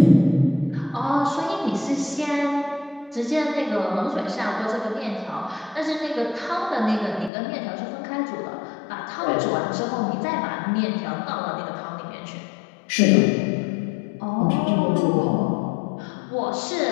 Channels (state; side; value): drops out; right; at 7.3 s